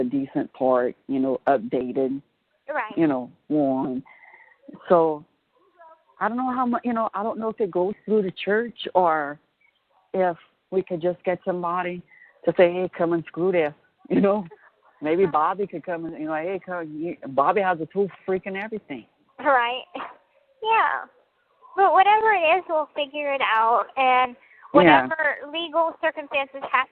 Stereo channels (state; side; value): identical; both; correlation 1.00